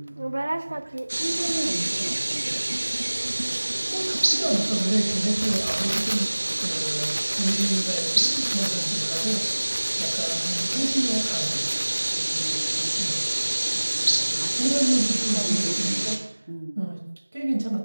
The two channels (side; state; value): both; inverted; correlation -1.00